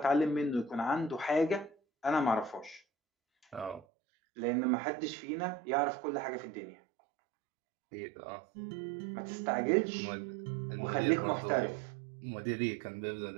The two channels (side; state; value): left; drops out; at 3.9 s